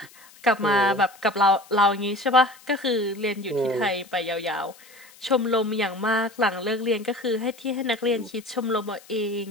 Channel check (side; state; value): left; noise; hiss, 24 dB below the sound